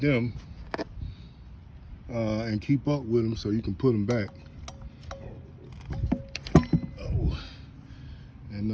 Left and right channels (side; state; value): both; identical; correlation 1.00